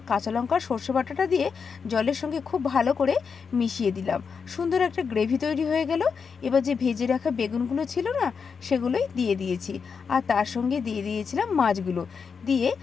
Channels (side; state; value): right; quieter; 5.9 dB